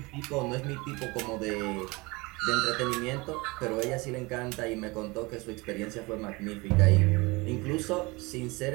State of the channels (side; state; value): left; quieter; 24.6 dB